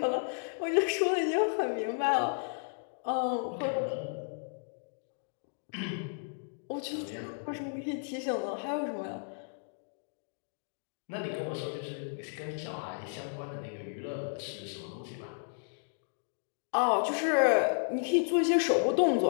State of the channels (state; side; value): silent; right; digital silence